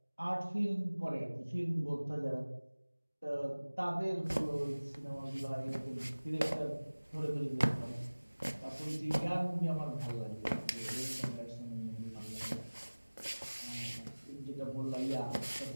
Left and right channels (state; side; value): inverted; both; correlation -1.00